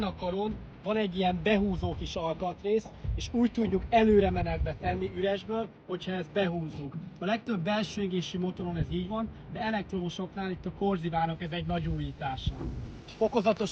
a karon van egy ilyen behúzó kis alkatrész, és úgy tudjuk előre menetbe tenni üresből, hogyha ezt behúzzuk. A legtöbb belső égésű motoron ez így van, de elektromosoknál itt a Corsivának ez egy nagy újítása.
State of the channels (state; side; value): identical; both; correlation 1.00